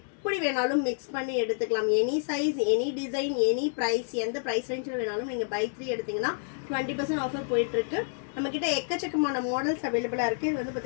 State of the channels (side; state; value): right; silent; digital silence